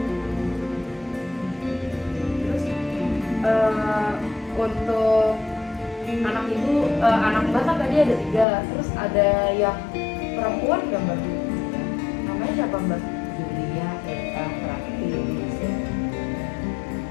Terus untuk anak ibu, anak Mbak kan tadi ada 3, terus ada yang perempuan nggak Mbak? Namanya siapa Mbak? Julia, Eka, Prakti,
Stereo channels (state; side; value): drops out; right; at 8.5 s